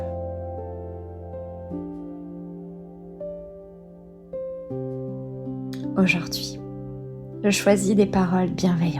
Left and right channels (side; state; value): both; identical; correlation 1.00